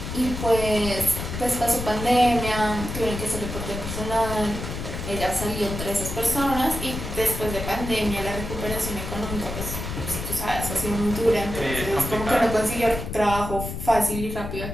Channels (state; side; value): noise; left; rumble, 6 dB below the sound